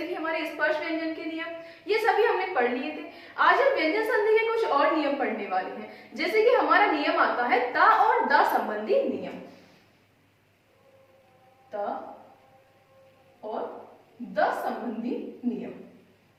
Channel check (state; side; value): identical; both; correlation 1.00